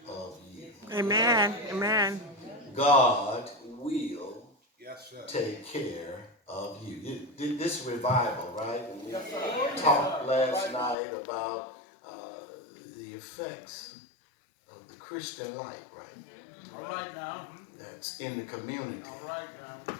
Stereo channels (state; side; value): drops out; right; at 11.0 s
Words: of you. Amen. Amen. God will take care of you. This revival, right? And we talked last night about the effects of the Christian light, right? All right now. That's in the community. All right now.